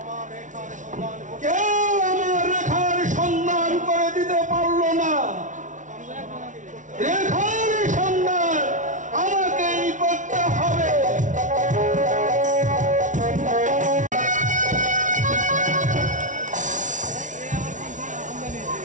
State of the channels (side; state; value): left; late; 0.37 ms